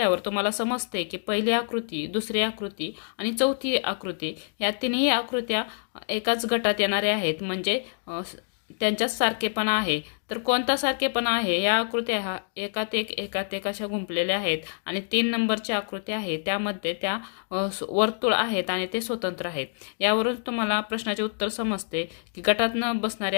तुम्हाला समजते की पहिली आकृती, दुसरी आकृती आणि चौथी आकृती या तिन्ही आकृत्या एकाच गटात येणाऱ्या आहेत, म्हणजे त्यांच्यात सारखेपणा आहे। तर कोणता सारखेपणा आहे? या आकृत्या एकात एक अशा गुंफलेल्या आहेत आणि 3 नंबरची आकृती आहे त्यामध्ये त्या वर्तुळ आहेत आणि ते स्वतंत्र आहेत। यावरून तुम्हाला प्रश्नाचे उत्तर समजते की गटात न बसणारी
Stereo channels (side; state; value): right; silent; digital silence